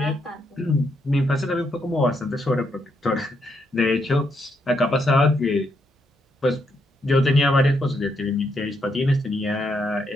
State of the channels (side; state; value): both; normal; correlation 0.77